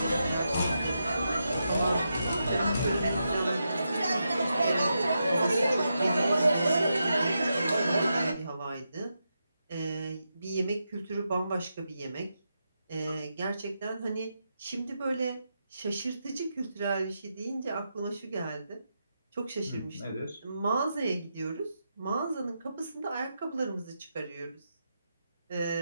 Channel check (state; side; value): inverted; both; correlation -0.86